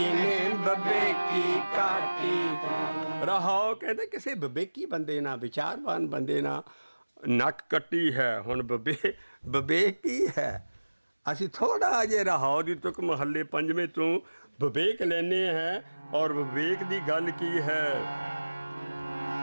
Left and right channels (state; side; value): inverted; both; correlation -1.00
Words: ਬੱਬੇ ਕੀ ਕਾਟੀ ਤੂੰ। ਰਹਾਓ ਕਹਿੰਦੇ ਕਿਸੇ ਬਬੇਕੀ ਬੰਦੇ ਨਾਲ, ਵਿਚਾਰਵਾਨ ਬੰਦੇ ਨਾਲ ਨੱਕ ਕੱਟੀ ਹੈ। ਹੁਣ ਬਬੇਕ ਕੀ ਹੈ। ਅਸੀਂ ਥੋੜ੍ਹਾ ਜਿਹੇ ਰਹਾਓ ਦੀ ਤੁਕ ਮਹੱਲੇ ਪੰਜਵੇਂ ਤੋਂ ਵਿਵੇਕ ਲੈਂਦੇ ਹੈ। ਔਰ ਵਿਵੇਕ ਦੀ ਗੱਲ ਕੀ ਹੈ,